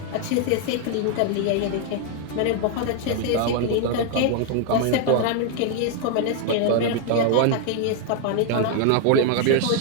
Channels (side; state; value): both; different; correlation 0.00